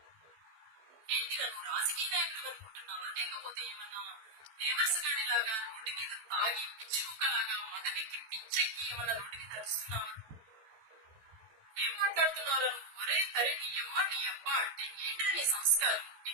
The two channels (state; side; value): late; left; 14 ms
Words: ఏంటిగా నువ్వు రాజకీయ నాయకుడు అనుకుంటున్నావా, లేకపోతే ఏమన్నా దేవర్స్ గాడిలాగా రోడ్డు మీద తాగి పిచ్చి కుక్కలాగా మదవికి పిచ్చెక్కి ఏమన్నా రోడ్డు మీద అరుస్తున్నావా? ఏం మాట్లాడుతున్నారా నువ్వు? ఒరే తరి నీ అమ్మ నీ అబ్బ అంటే ఏంటో నీ సంస్కారం?